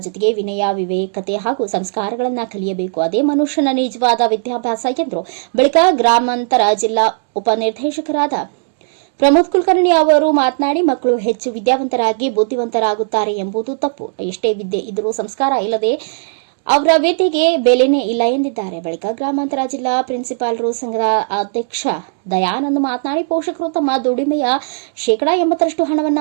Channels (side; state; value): left; silent; digital silence